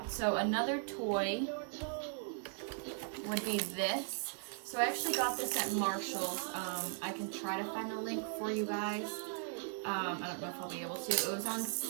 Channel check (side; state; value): left; silent; 52 dB below the other